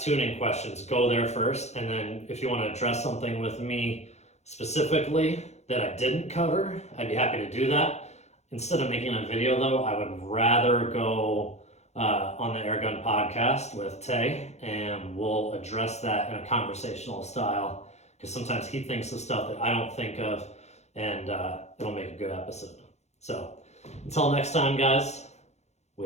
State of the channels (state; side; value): late; right; 0.32 ms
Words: tuning questions, go there first, and then if you want to address something with me specifically that I didn't cover, I'd be happy to do that. Instead of making a video though, I would rather go on the Airgun podcast with Tay, and we'll address that in a conversational style, because sometimes he thinks of stuff that I don't think of, and it'll make a good episode. So until next time, guys,